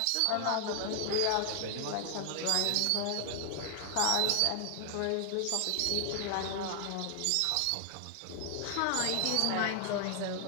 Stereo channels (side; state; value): both; different; correlation 0.00